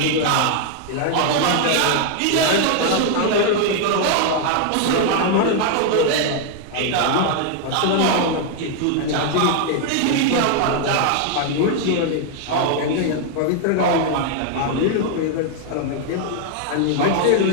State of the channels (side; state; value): both; different; correlation 0.00